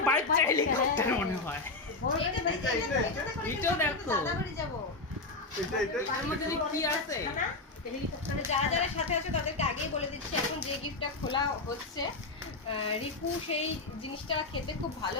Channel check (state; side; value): quieter; right; 3.4 dB